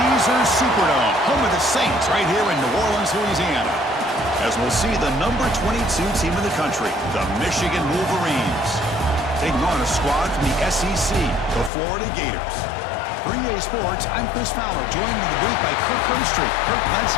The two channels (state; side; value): drops out; right; at 11.7 s